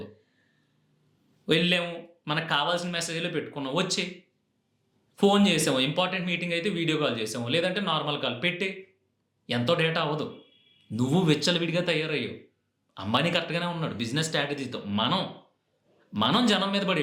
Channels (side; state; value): both; identical; correlation 1.00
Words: వెళ్ళాము, మనకు కావాల్సిన మెసేజ్లో పెట్టుకున్నాం, వచ్చి ఫోన్ చేసాము, ఇంపార్టెంట్ మీటింగ్ అయితే వీడియో కాల్ చేసాము, లేదంటే నార్మల్ కాల్ పెట్టి. ఎంతో డేటా అవ్వదు. నువ్వు విచ్చలవిడిగా తయారయ్యావు. అంబానీ కరెక్ట్గానే ఉన్నాడు బిజినెస్ స్ట్రాటజీతో. మనం జనం మీద పడి